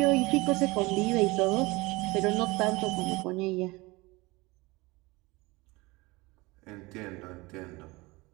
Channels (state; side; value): quieter; left; 23.1 dB